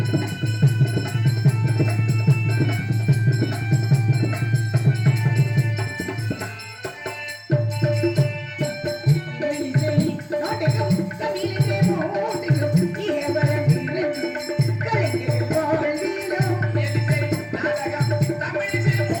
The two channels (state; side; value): identical; both; correlation 1.00